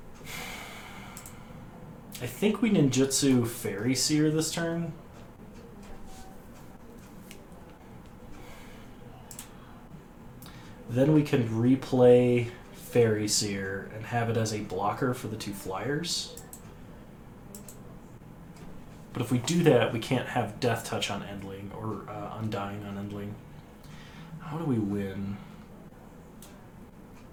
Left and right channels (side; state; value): both; identical; correlation 1.00